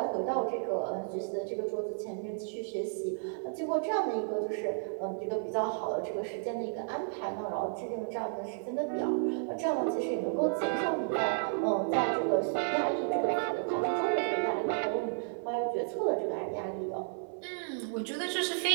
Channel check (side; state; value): left; silent; 56 dB below the other